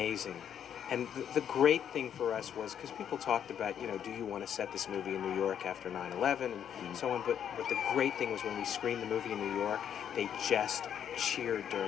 And the great thing for us was because people talked about do you want to set this movie in New York after 9/11 and so on. But the great thing was when we screened the movie in New York, they just cheered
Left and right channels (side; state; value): right; quieter; 9.0 dB